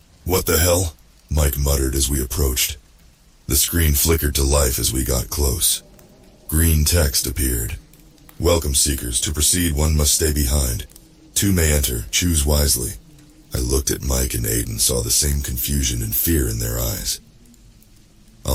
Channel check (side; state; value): both; identical; correlation 1.00